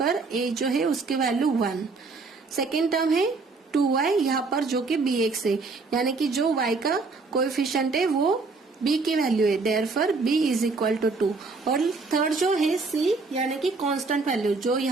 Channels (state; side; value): quieter; left; 4.0 dB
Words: a जो है उसकी वैल्यू 1. सेकेंड टर्म है 2y यहाँ पर जो कि bx है, यानी कि जो y का कोएफिशिएंट है वो b की वैल्यू है, therefore b is equal to 2. और थर्ड जो है c यानी कि कांस्टेंट वैल्यू जो